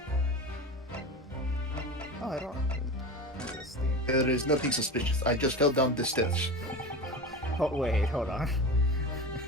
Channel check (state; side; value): normal; both; correlation 0.28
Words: Oh, I don't know this thing. There is nothing suspicious. I just fell down the stairs. Oh, wait, hold on.